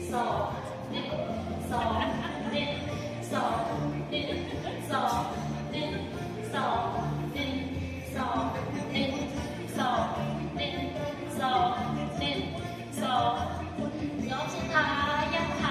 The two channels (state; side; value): identical; both; correlation 1.00